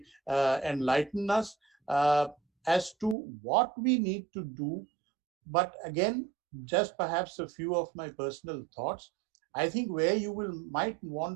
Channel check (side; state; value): left; drops out; at 3.2 s